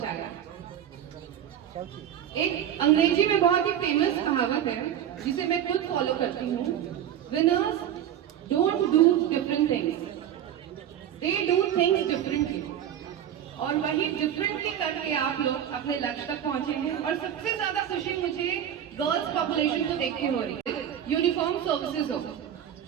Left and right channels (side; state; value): left; quieter; 10.1 dB